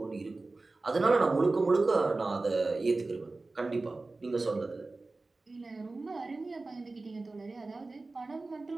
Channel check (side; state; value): left; quieter; 3.4 dB